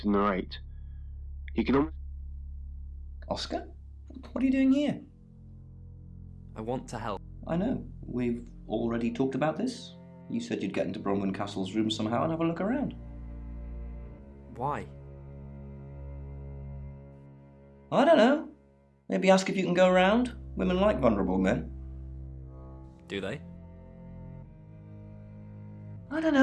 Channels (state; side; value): identical; both; correlation 1.00